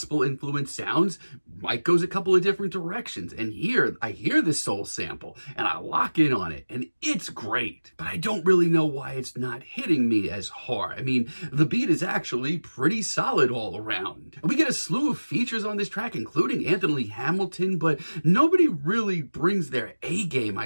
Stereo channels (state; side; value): inverted; both; correlation -1.00